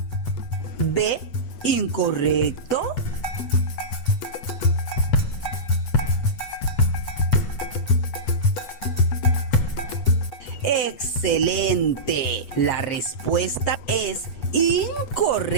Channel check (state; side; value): late; right; 8.1 ms